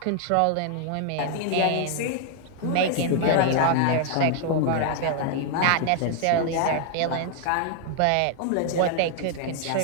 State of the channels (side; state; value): both; different; correlation 0.00